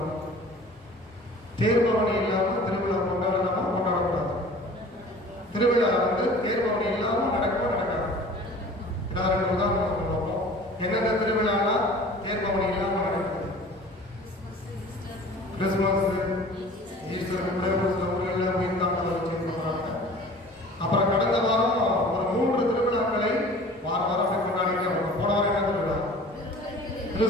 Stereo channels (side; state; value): both; normal; correlation 0.44